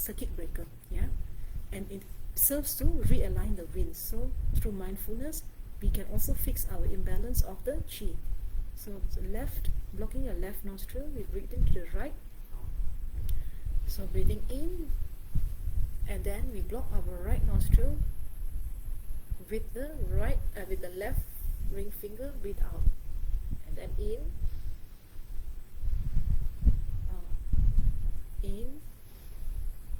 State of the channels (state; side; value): identical; both; correlation 1.00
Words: breaker, yeah. And it serves to realign the winds. So through mindfulness, we can also fix our imbalance of the chi. So left, blocking your left nostril, we breathe into the right. So breathing in, and then we block our right nostril with the with the left ring finger. Breathe out, and then in, in,